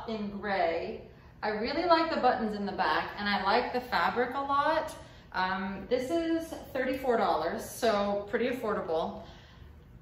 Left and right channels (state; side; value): identical; both; correlation 1.00